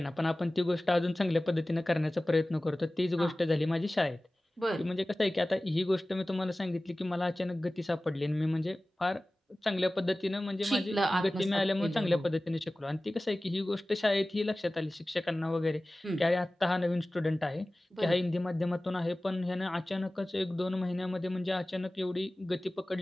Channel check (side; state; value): both; normal; correlation 0.97